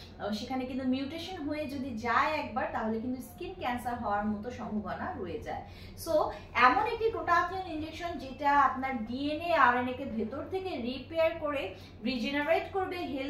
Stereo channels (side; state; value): both; identical; correlation 1.00